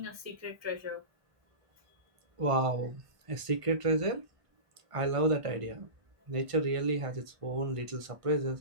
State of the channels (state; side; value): late; left; 1.5 ms